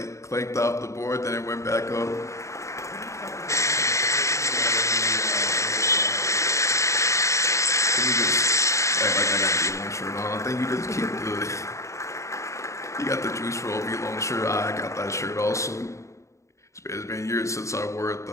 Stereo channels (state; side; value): late; right; 0.14 ms